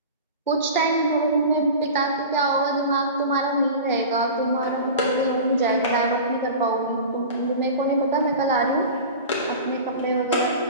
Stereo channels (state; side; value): inverted; both; correlation -0.34